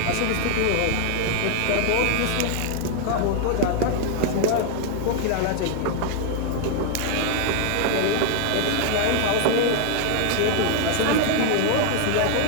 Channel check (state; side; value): different; both; correlation 0.00